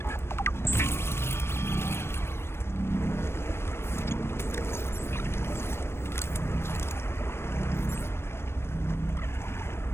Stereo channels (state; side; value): late; right; 0.12 ms